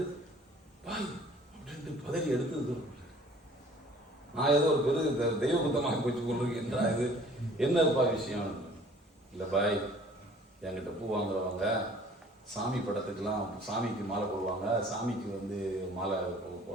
பாய் அப்படின்ட்டு பதறி எடுத்து தூர போட்டேன். நான் ஏதோ ஒரு பெரு தெய்வ குத்தமாக போச்சு கொண்டிருக்கேன்றா, இது என்னப்பா விஷயம்? இல்லை பாய், என்கிட்ட பூ வாங்குறவங்க சாமி படத்துக்கெல்லாம் சாமிக்கு மாலை போடுவாங்க, சாமிக்கு வந்து மாலை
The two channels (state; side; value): normal; both; correlation 0.52